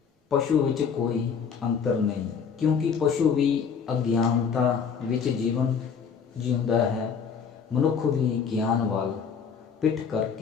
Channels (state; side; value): quieter; right; 6.5 dB